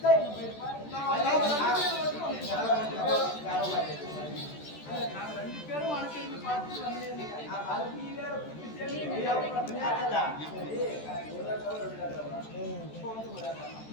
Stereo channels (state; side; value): late; right; 14 ms